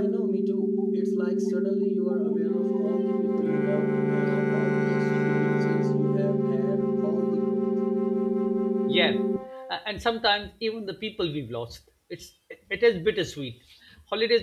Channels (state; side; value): identical; both; correlation 1.00